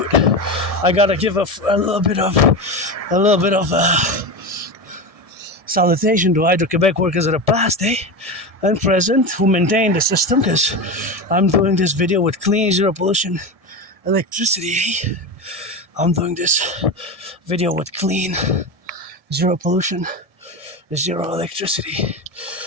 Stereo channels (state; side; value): late; left; 1.7 ms